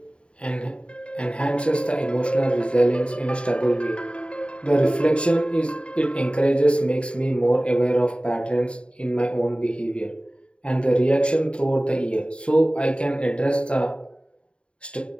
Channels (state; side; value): late; right; 0.056 ms